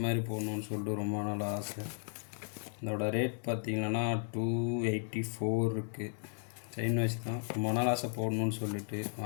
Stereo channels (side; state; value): right; silent; 54 dB below the other